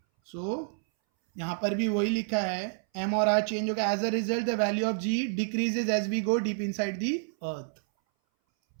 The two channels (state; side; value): silent; left; 59 dB below the other